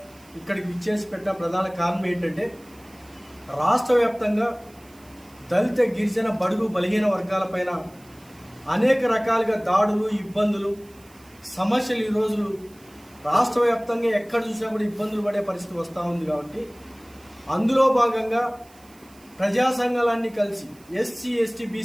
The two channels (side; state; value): right; noise; hiss, 27 dB below the sound